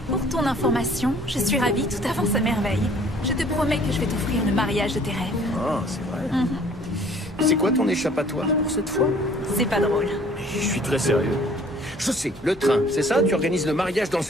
Pour ton information, je suis ravie, tout avance à merveille. Je te promets que je vais t'offrir le mariage de tes rêves. Ah, c'est vrai. C'est quoi ton échappatoire pour cette fois? C'est pas drôle. Je suis très sérieux. Je sais, le train, c'est ça? Tu organises le mariage dans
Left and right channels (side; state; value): both; normal; correlation 0.55